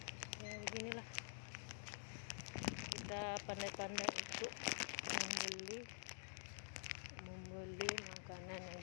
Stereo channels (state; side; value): silent; right; digital silence